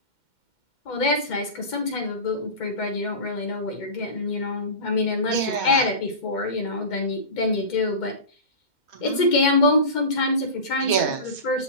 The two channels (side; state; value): right; late; 2.1 ms